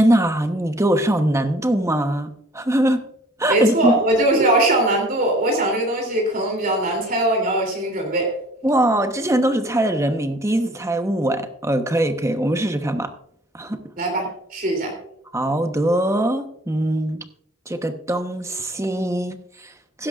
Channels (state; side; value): normal; both; correlation 0.53